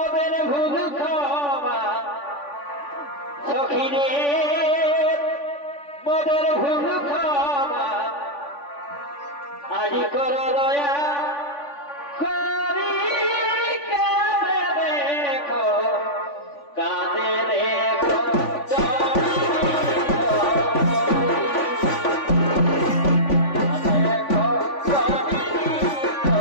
ভুল ক্ষমা সখিরে, মোদের ভুল ক্ষমা আজি কর দয়া করি, কাঁদে দেখো, কাঁদে দেখো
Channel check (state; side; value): late; right; 3.5 ms